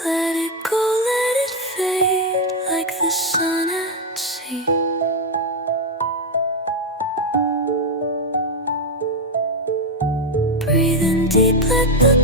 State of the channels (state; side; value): normal; both; correlation 0.05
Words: Let it go, let it fade like the sun at sea. Breathing deep, let the